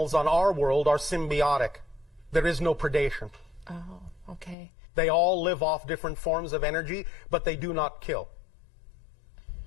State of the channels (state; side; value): drops out; right; at 4.5 s